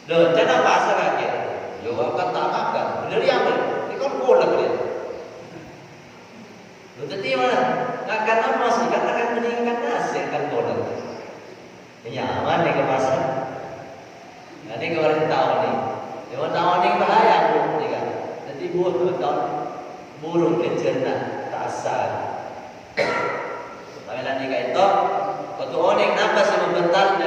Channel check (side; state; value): both; identical; correlation 1.00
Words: Loh, jangan bahasa lagi. Yo akan tak makan. Benar ya, ini kan kolak dia. Loh, tadi mana? Akan apa sih? Kan akan meningkat nasi kan kolak. Nyaman nih ke pasar. Nanti kemarin tahu nih. Yang tahu nih bahaya burung nih kan. Nanti burung kecerna tak asal. Tapi nanti kayak itu. Waktu orang kenapa sih membentar